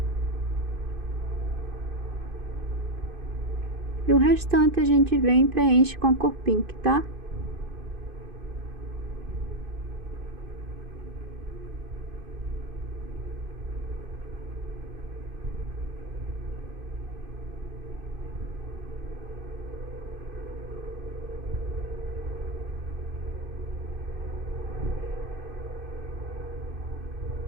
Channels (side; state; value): left; late; 2.5 ms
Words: E o restante a gente vem e preenche com a cor pink, tá?